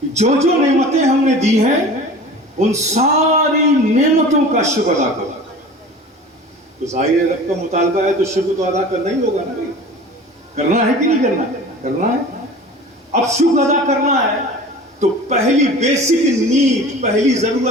جو نعمتیں ہم نے دی ہیں ان ساری نعمتوں کا شکر ادا کرو. تو ظاہر رب کا مطالبہ ہے تو شکر تو ادا کرنا ہی ہوگا نا. کرنا ہے کہ نہیں کرنا؟ کرنا ہے. اب شکر ادا کرنا ہے تو پہلی بیسک نیڈ، پہلی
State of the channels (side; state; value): both; normal; correlation 0.39